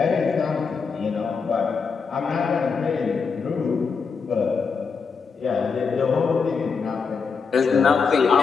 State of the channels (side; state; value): right; quieter; 5.4 dB